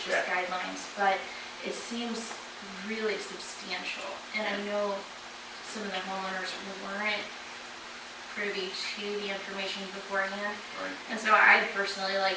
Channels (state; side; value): identical; both; correlation 1.00